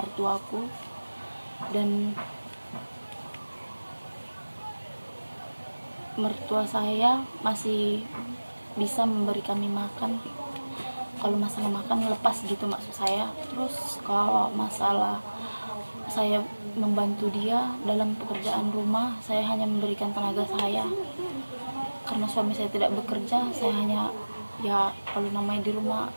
dan mertua saya masih bisa memberi kami makan. Kalau masalah makan lepas gitu maksud saya. Terus kalau masalah saya membantu dia dalam pekerjaan rumah, saya hanya memberikan tenaga saya. Karena suami saya tidak bekerja, saya hanya kalau namanya di rumah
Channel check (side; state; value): both; inverted; correlation -1.00